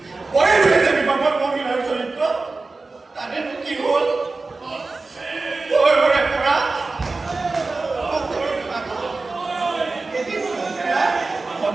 মহিলাৰ চৰিত্ৰ তাতেনো কি হ'ল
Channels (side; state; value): left; quieter; 3.7 dB